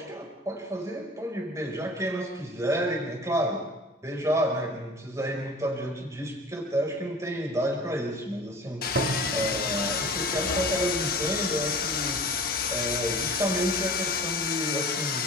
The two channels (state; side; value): normal; both; correlation 0.41